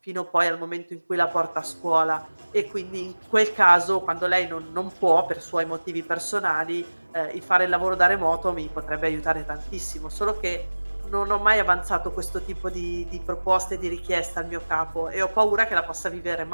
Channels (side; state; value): both; inverted; correlation -1.00